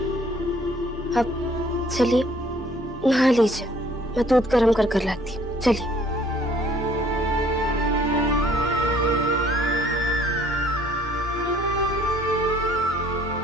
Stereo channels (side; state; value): both; normal; correlation 0.58